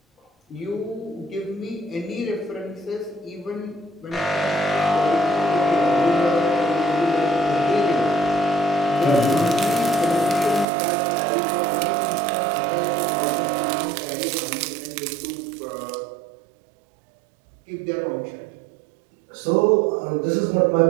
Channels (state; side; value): drops out; left; at 10.7 s